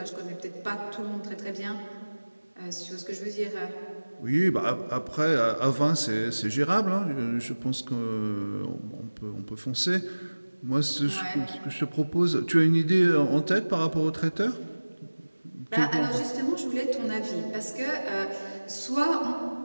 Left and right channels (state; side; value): inverted; both; correlation -1.00